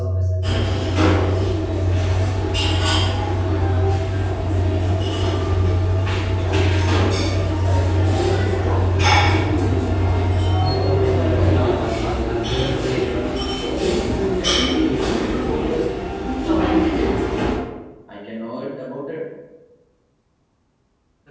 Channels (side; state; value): both; identical; correlation 1.00